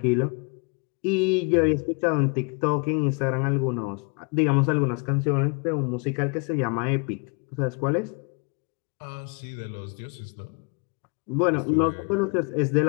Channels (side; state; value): right; quieter; 34.4 dB